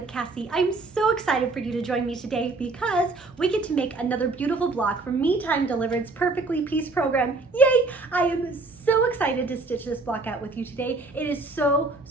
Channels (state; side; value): quieter; left; 3.5 dB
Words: Cassie. I'm so excited for you to join me today because we get to make another beautiful block from Me Time Delivered's Perfectly Piece program. Yay! I am so excited to stitch this block out with you today. It is so